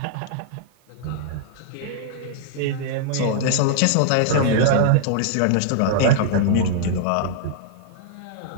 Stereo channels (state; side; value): different; both; correlation -0.01